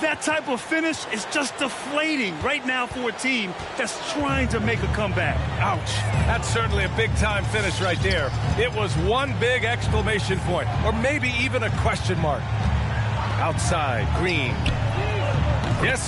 that type of finish is just deflating right now for a team that's trying to make a comeback. Ouch. That's certainly a big-time finish right there. It was one big exclamation point, or maybe even a question mark. Outside, Green. Yes,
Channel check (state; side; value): identical; both; correlation 1.00